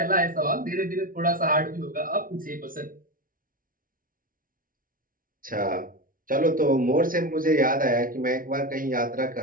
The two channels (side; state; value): left; late; 0.40 ms